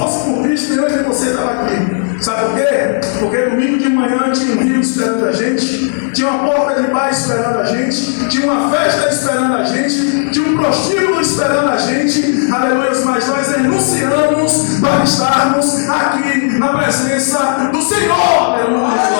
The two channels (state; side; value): silent; right; digital silence